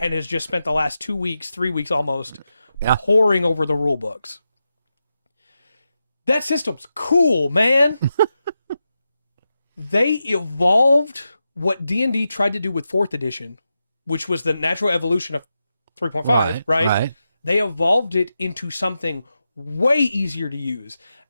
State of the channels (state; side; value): inverted; both; correlation -0.89